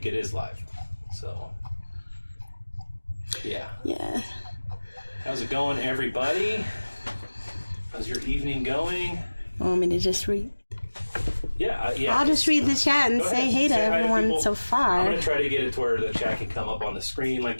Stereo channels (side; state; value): both; inverted; correlation -1.00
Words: it is live, so yeah. Yeah. How's it going, everybody? How's your evening going? Want me to just read? Yeah, I'll just read the chat and say hey to everyone so far. I'm going to try to get it to where the chat can come up on the screen